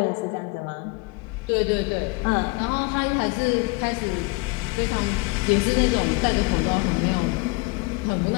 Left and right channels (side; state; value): right; quieter; 26.8 dB